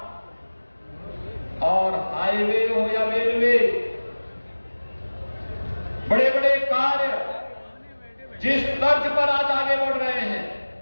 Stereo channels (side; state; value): both; inverted; correlation -1.00